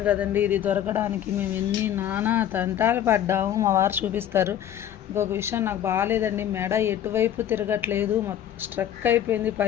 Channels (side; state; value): right; quieter; 10.6 dB